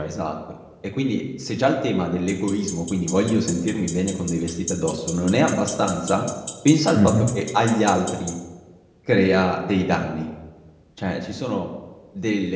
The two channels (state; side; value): identical; both; correlation 1.00